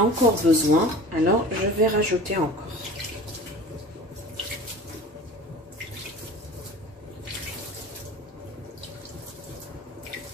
encore besoin, alors je vais rajouter encore.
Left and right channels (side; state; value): both; normal; correlation 0.41